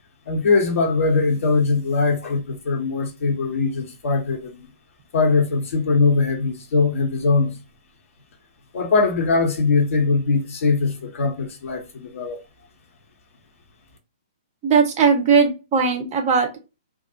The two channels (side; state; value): both; inverted; correlation -0.53